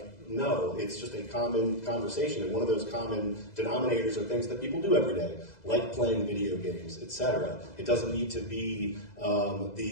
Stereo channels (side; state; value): right; late; 2.0 ms